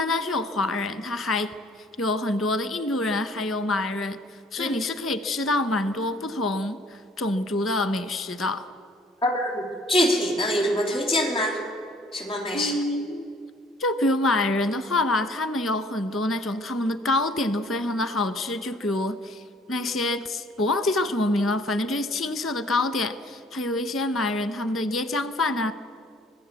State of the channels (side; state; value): both; normal; correlation 0.57